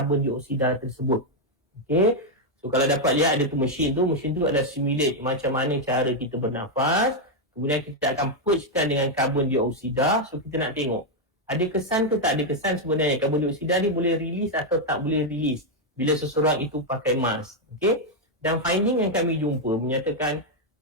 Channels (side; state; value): both; normal; correlation 0.01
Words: dioksida tersebut. Okay. So kalau dapat lihat ada tu mesin tu adalah simulate macam mana cara kita bernafas, kemudian kita akan purgekan dengan karbon dioksida. So kita nak tengok ada kesan ke tak ada kesan sebenarnya karbon dioksida ni boleh release atau tak boleh release bila seseorang itu pakai mask. Okay. Dan finding yang kami jumpa menyatakan